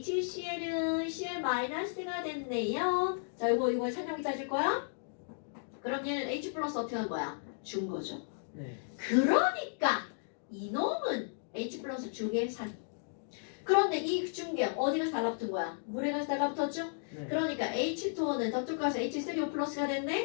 Cl-가 됐네요. 자, 이거 찬영이 따질 거야? 그럼 얘는 H 플러스 어떻게 한 거야? 준 거죠. 네. 그러니까 이놈은 H 플러스 중의 산. 그런데 이 중계 어디 가서 달라붙은 거야? 물에 가서 달라붙었죠? 네. 그러니까 H2O는 저쪽 가서 H3O 플러스가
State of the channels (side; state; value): right; silent; digital silence